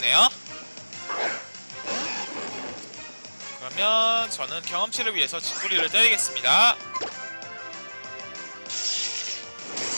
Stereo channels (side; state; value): both; inverted; correlation -1.00